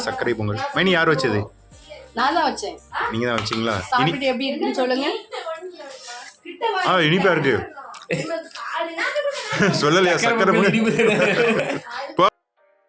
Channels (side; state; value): both; identical; correlation 1.00